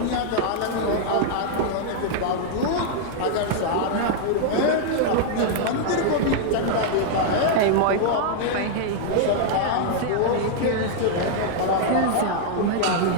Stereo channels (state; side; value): different; both; correlation -0.01